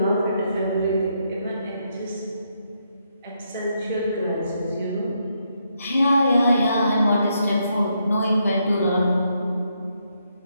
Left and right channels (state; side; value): inverted; both; correlation -0.78